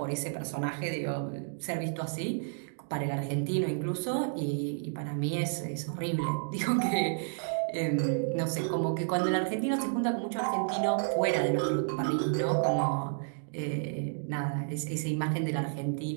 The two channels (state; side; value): silent; left; digital silence